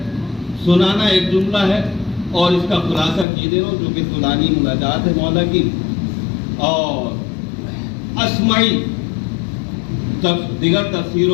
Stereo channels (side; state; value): right; drops out; at 3.2 s